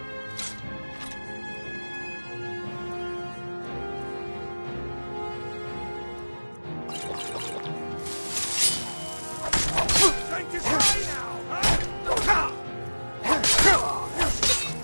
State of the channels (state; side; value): inverted; both; correlation -1.00